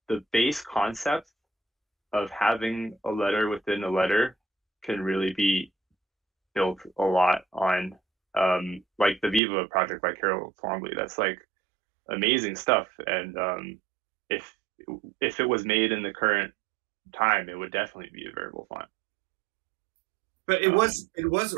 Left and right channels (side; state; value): left; drops out; at 9.4 s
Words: base concept of having a letter within a letter can really be built a lot on, like the Viva project by Carol Twombly. That's like amazing stuff, and if it was made in the current time, it would definitely be a variable font. But it was